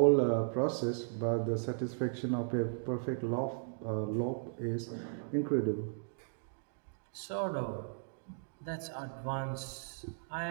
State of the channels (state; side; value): silent; left; digital silence